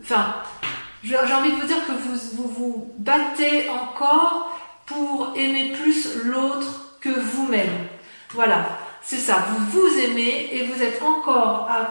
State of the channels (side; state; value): both; inverted; correlation -1.00